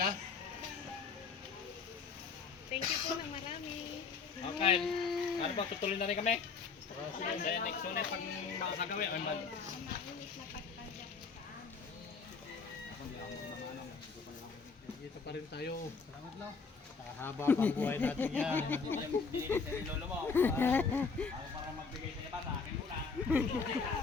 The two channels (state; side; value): quieter; right; 5.0 dB